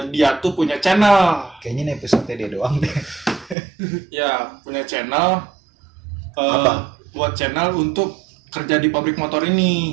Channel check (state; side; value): drops out; left; at 3.6 s